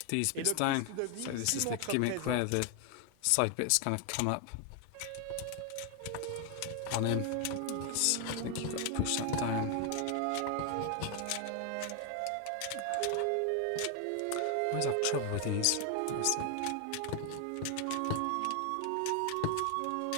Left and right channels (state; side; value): different; both; correlation 0.00